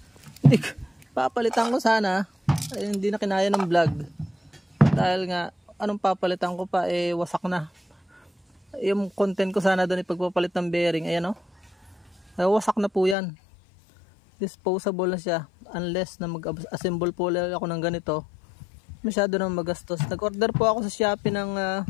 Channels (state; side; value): drops out; right; at 13.2 s